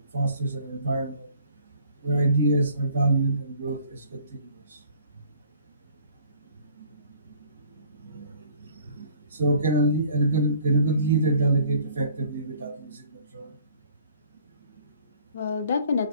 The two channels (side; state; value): both; inverted; correlation -0.56